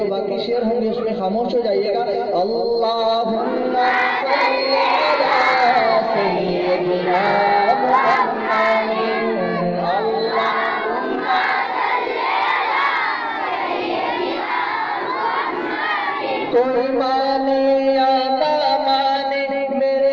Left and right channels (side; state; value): both; identical; correlation 1.00